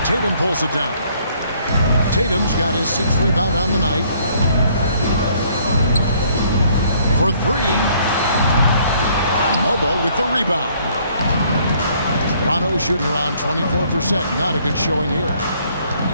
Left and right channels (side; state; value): both; inverted; correlation -0.63